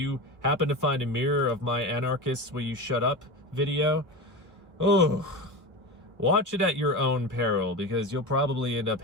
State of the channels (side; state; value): left; late; 1.3 ms